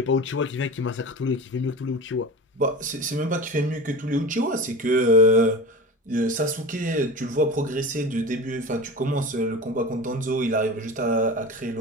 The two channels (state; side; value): normal; both; correlation 0.33